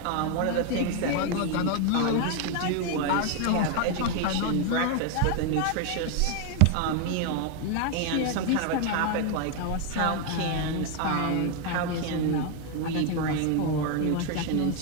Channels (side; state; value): both; different; correlation 0.01